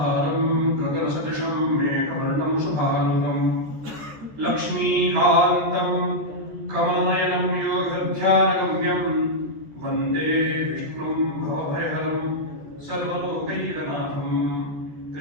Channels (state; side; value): late; left; 13 ms